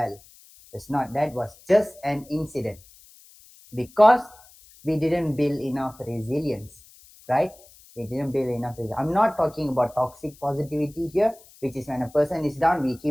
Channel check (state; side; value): noise; left; hiss, 25 dB below the sound